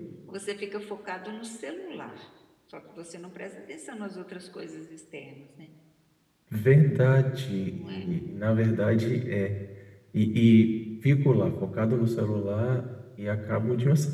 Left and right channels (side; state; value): both; identical; correlation 1.00